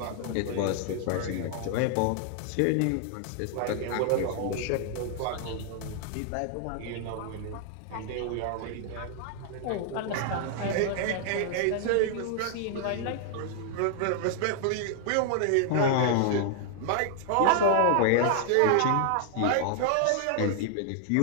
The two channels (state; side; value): different; both; correlation 0.00